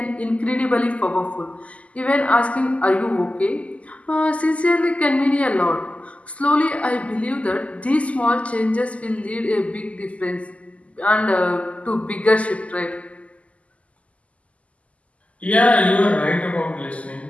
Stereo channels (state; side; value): late; right; 0.066 ms